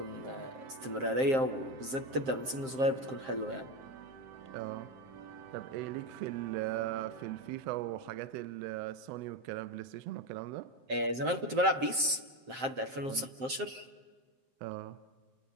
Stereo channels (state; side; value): late; left; 7.6 ms